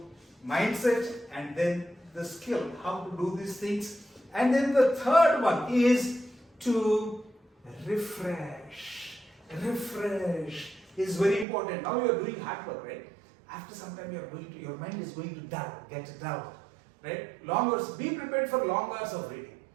mindset, and then the skill, how to do these things. And then the third one is to refresh. refresh is very important. Now you are doing hard work, right? After some time your mind is going to get dull, right? Long hours, be prepared for long hours of reading.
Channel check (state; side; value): drops out; left; at 11.5 s